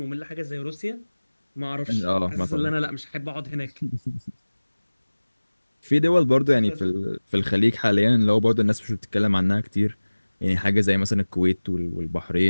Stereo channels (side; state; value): both; inverted; correlation -1.00